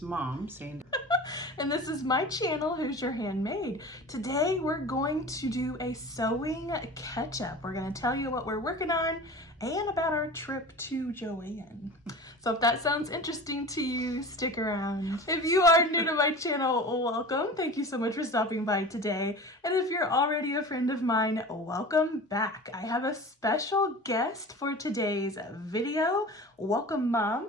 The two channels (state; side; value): normal; both; correlation 0.36